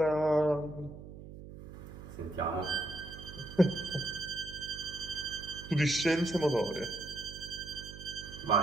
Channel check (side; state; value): right; noise; hum, 14 dB below the sound